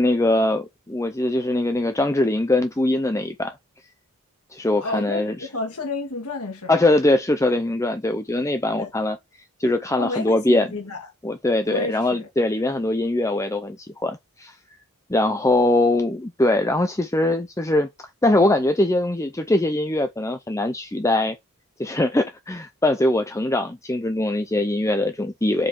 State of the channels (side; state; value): both; normal; correlation 0.73